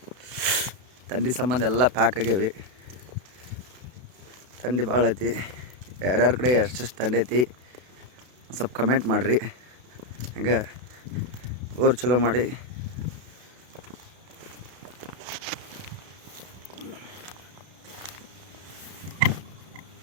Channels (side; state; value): left; late; 32 ms